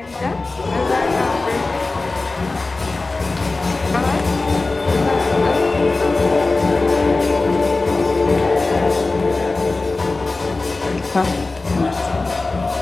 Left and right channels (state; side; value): quieter; right; 3.4 dB